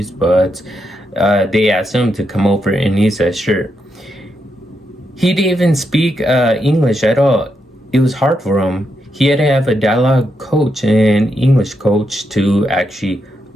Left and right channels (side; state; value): both; normal; correlation 0.82